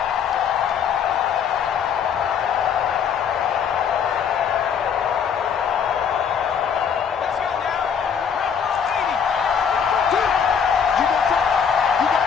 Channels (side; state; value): right; quieter; 7.2 dB